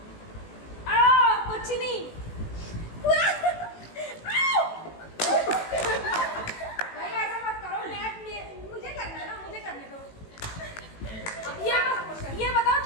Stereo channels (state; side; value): late; right; 18 ms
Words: कुछ नहीं भाई ऐसा मत करो, मुझे करना है ना, मुझे करने दो। ये बताओ